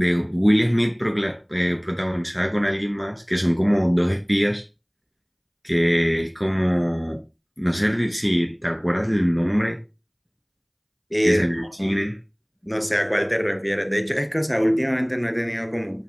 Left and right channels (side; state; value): both; identical; correlation 1.00